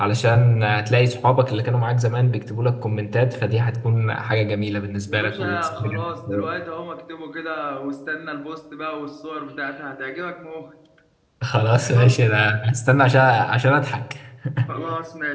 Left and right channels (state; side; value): identical; both; correlation 1.00